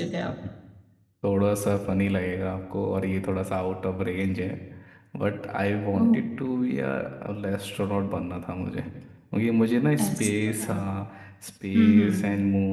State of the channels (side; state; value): both; identical; correlation 1.00